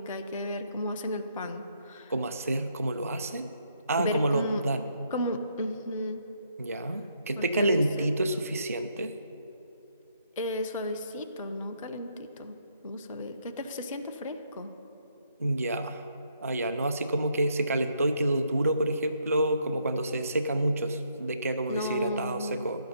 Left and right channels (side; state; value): both; inverted; correlation -0.72